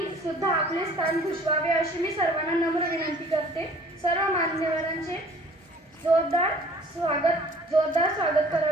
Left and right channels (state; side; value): normal; both; correlation 0.52